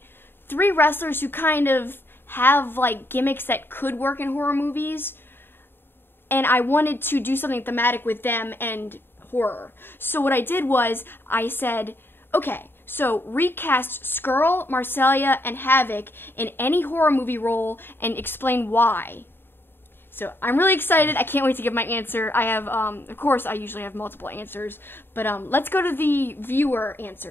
3 wrestlers who kind of have like gimmicks that could work in horror movies. And I wanted to do something thematic with them and horror. So what I did was I said, okay, so recast Scurll, Marcellia, and Havoc in any horror movie role and explain why. So I'm really excited. I can't wait to give my answer. I have, of course, I usually have multiple answers, but let's go to the viewer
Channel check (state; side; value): late; right; 0.10 ms